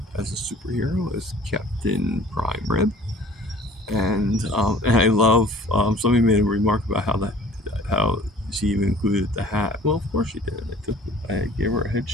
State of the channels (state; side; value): normal; both; correlation 0.49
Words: superhero, as Captain Prime Rib. And I love, somebody made a remark about how she even included the hat. Well, of course she did. I gave her a